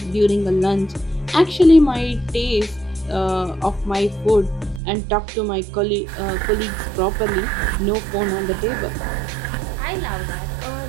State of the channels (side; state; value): left; drops out; at 4.8 s